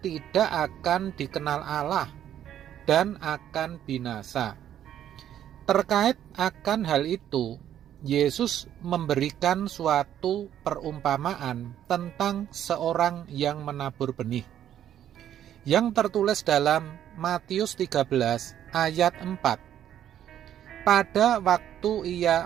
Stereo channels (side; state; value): left; quieter; 10.7 dB